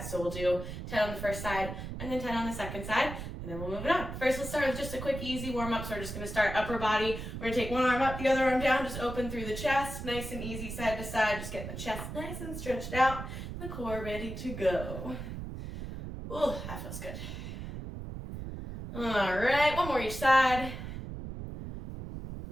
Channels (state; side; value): noise; right; rumble, 8 dB below the sound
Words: So we'll do 10 on the first side and then 10 on the second side, and then we'll move it on. First, let's start with just a quick, easy warm-up. So we're just going to start upper body. We're going to take one arm up, the other arm down, just open through the chest, nice and easy side to side, just getting the chest nice and stretched out, the core ready to go. Ooh, that feels good. All right, one more each side.